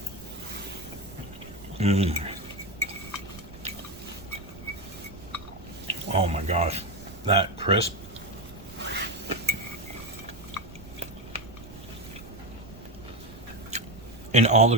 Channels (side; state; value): right; noise; rumble, 17 dB below the sound